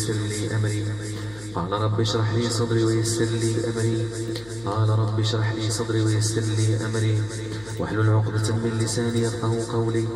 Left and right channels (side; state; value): left; noise; hum, 21 dB below the sound